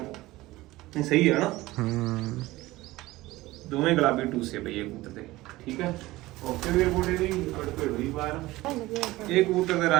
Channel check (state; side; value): quieter; left; 18.6 dB